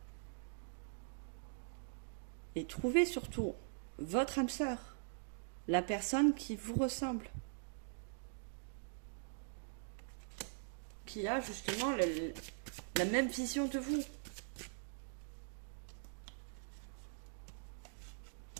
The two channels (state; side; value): silent; left; digital silence